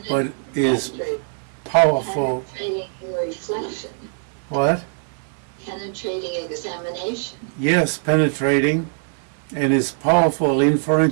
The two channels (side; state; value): left; silent; 59 dB below the other